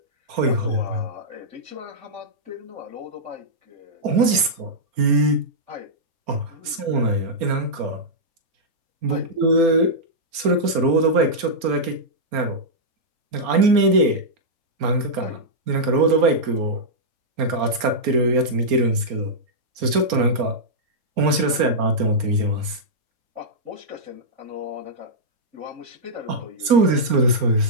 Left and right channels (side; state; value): left; late; 4.3 ms